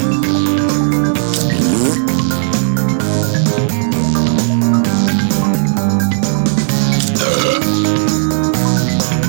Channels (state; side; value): silent; left; 55 dB below the other